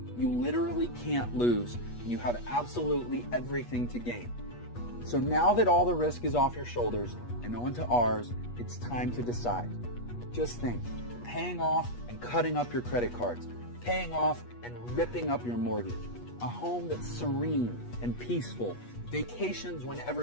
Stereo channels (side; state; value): right; late; 8.3 ms